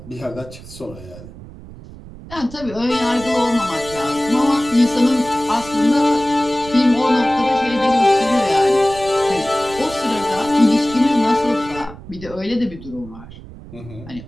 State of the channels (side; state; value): right; noise; rumble, 16 dB below the sound